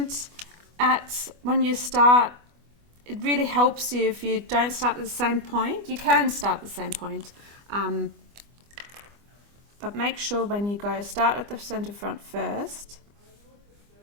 when you start. It really helps you if you don't start at the same point. You can start at the same point, but make sure when you go, start at the center front first.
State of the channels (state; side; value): late; left; 25 ms